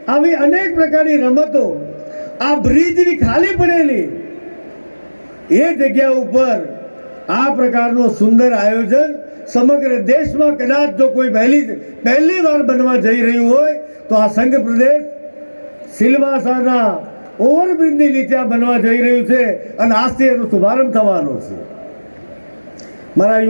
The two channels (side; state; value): both; inverted; correlation -1.00